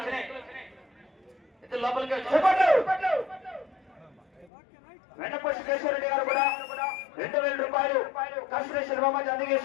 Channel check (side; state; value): right; drops out; at 4.5 s